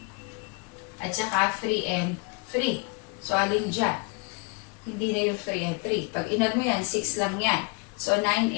at saka 3 and 3. So, alin dyan? Hindi na yung 3 and 3. Pag in-add mo yan, 6 lang yan. So, 9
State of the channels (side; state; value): right; quieter; 30.6 dB